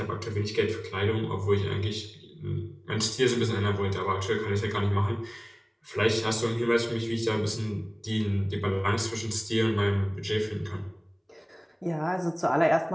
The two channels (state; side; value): identical; both; correlation 1.00